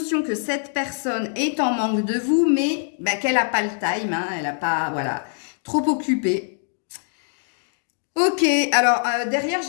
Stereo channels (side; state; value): right; silent; digital silence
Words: que cette personne est en manque de vous, mais ben, qu'elle n'a pas le time, hein, elle n'a pas, voilà, trop occupée. Ok, alors derrière,